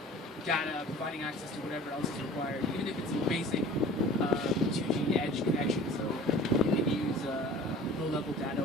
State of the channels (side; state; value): both; normal; correlation 0.44